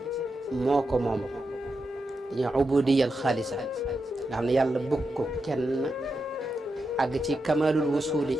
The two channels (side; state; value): both; normal; correlation 0.87